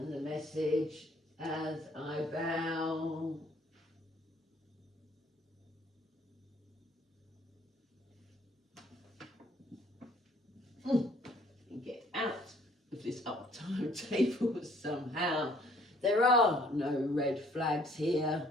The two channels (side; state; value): both; normal; correlation 0.60